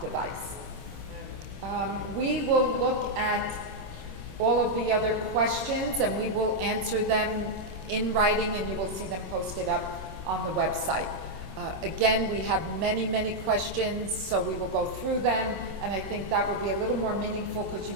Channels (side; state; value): left; late; 26 ms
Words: device. We will look at all of the other questions and we will answer them in writing and you will see them posted up on the website. Again, we have many, many questions, so we will go through them, and I think that will be a little more meaningful because you